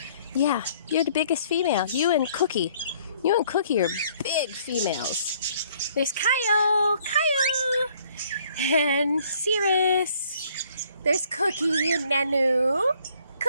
Yeah, you're the biggest female. You and Cookie. You and Cookie are big females. There's Kyle. And Cirrus. There's Cookie and Nanu.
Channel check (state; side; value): inverted; both; correlation -0.62